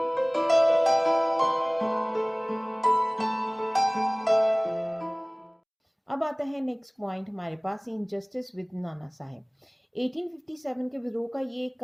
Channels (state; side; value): identical; both; correlation 1.00